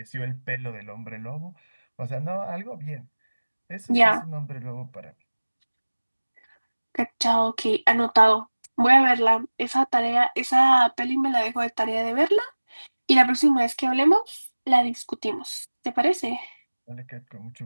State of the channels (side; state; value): both; inverted; correlation -1.00